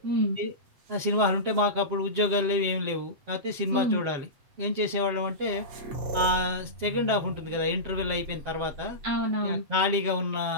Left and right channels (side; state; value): left; late; 7.6 ms